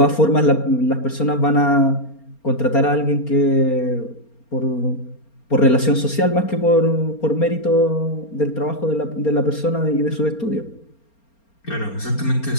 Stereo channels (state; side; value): late; right; 4.3 ms